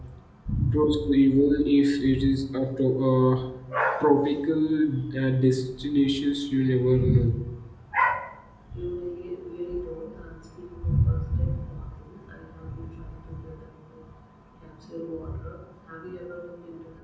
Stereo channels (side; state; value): both; identical; correlation 1.00